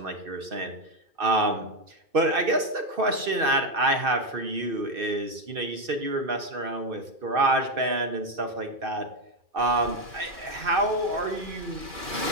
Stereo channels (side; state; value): left; late; 2.6 ms